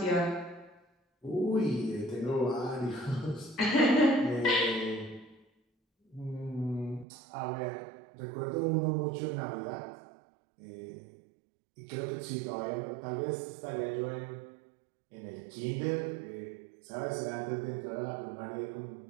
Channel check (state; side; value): drops out; left; at 7.1 s